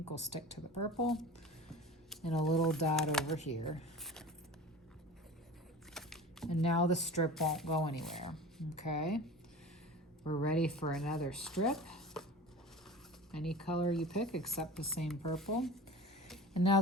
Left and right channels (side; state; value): both; normal; correlation 0.36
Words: will stick to the purple, and a little dot over here. And now the strip won't go anywhere. Okay, we're ready for another strip. Any color you pick except the same purple. And now